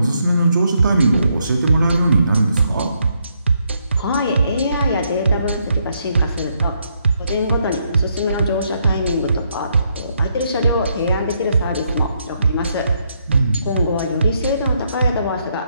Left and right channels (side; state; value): both; inverted; correlation -0.76